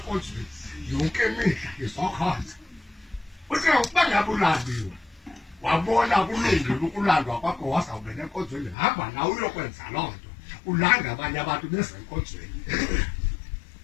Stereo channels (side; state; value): right; drops out; at 8.8 s